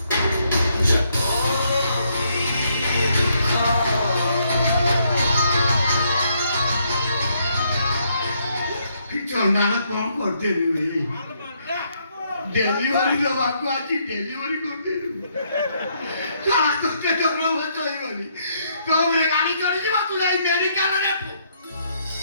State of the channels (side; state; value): both; inverted; correlation -0.73